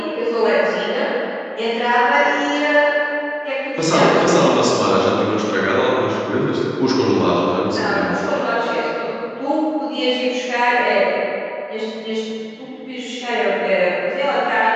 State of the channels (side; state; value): both; identical; correlation 1.00